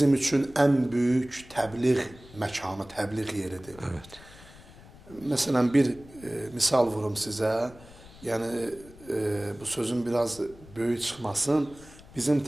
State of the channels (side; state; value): left; noise; rumble, 21 dB below the sound